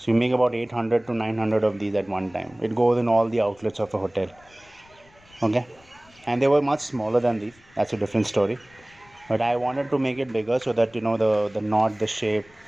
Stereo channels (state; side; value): noise; left; rumble, 29 dB below the sound